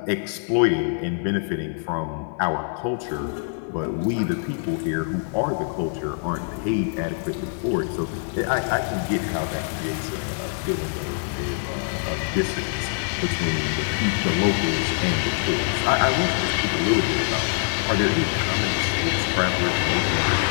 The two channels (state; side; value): silent; right; 62 dB below the other